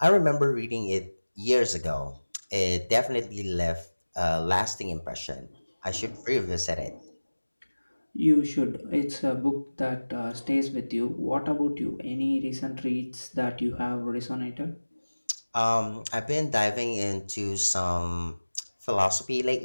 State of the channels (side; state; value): both; inverted; correlation -1.00